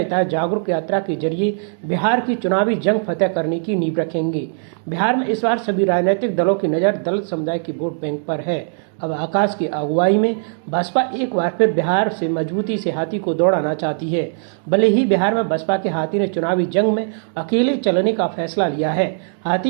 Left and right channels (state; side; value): silent; left; digital silence